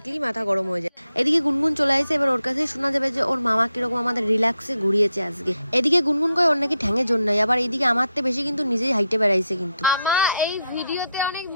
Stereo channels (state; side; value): inverted; both; correlation -0.83